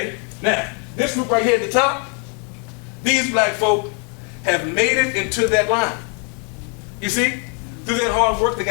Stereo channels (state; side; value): quieter; right; 36.6 dB